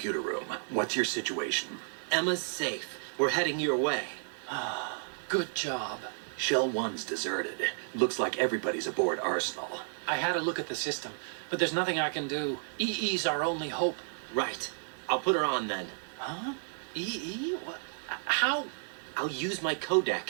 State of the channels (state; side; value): silent; left; digital silence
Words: room. What's your situation? Emma's safe. We're heading your way. Good job. Shell 1's deserted. Looks like everybody's aboard Arsenal. I had a look at the system, but there's nothing I can do. EE's our only hope. Right. I'll put her on then. Huh? EE? What? How? I'll use my